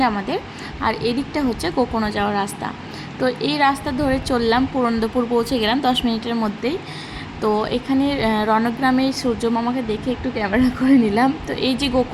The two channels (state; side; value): identical; both; correlation 1.00